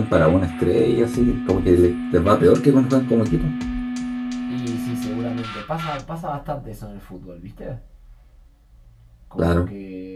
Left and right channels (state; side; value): identical; both; correlation 1.00